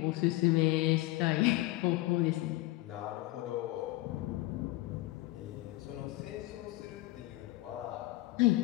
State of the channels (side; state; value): right; quieter; 19.1 dB